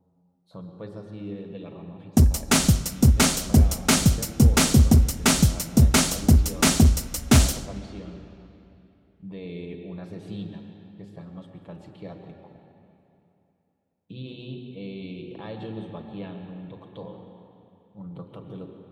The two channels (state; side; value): identical; both; correlation 1.00